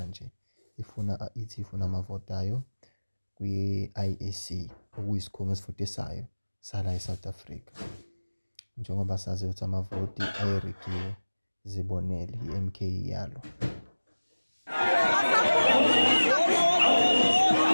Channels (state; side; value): inverted; both; correlation -1.00